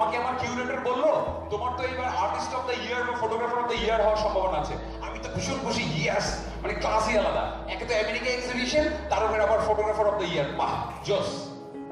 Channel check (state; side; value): identical; both; correlation 1.00